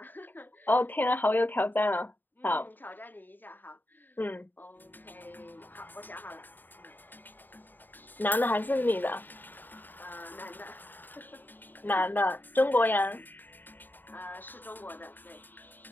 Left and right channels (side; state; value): right; late; 0.091 ms